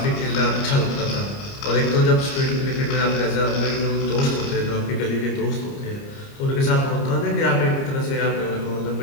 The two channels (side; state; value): right; late; 29 ms